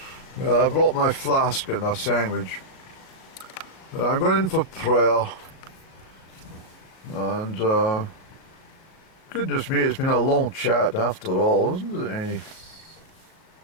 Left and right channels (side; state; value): right; late; 37 ms